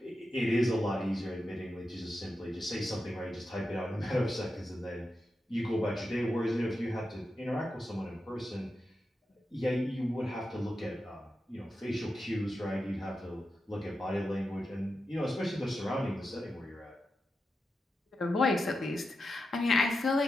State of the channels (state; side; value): normal; both; correlation 0.89